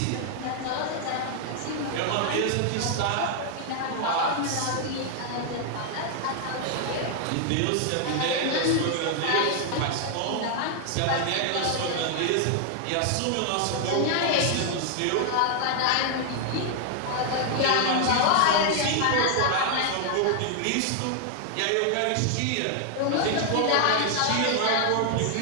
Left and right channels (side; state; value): both; different; correlation 0.00